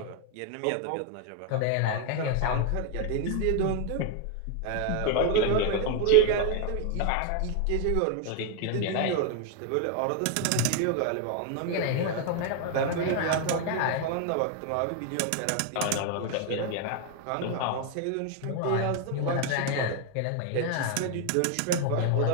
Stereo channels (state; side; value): different; both; correlation 0.00